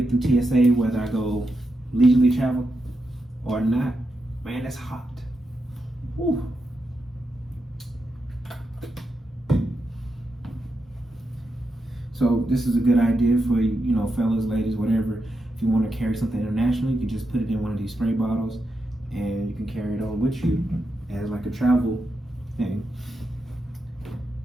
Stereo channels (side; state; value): both; normal; correlation 0.86